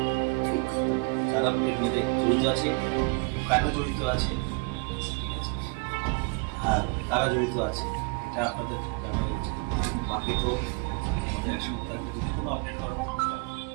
যারা এর মধ্যে জড়িত আছে কেন জড়িত আছে ঠিক আছে আর কারা জড়িত আছে এটা আপনাদের জানা হয়েছে বাকি তো আমাদের একসঙ্গে থাকবে যদি কোনো আপডেট করা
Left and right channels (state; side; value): quieter; left; 32.9 dB